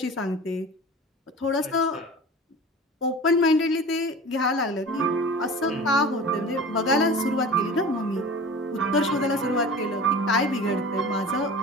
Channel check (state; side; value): normal; both; correlation 0.37